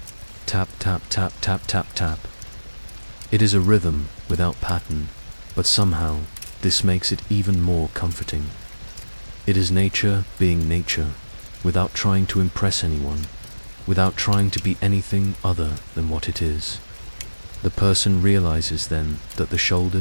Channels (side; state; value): both; inverted; correlation -1.00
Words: Tap, tap, tap, tap, tap, tap. It is a rhythm without pattern, but somehow this makes it even more comforting. It is nature being nature, without trying to impress anyone, without trying to be anything other than what it is. The person realizes then that the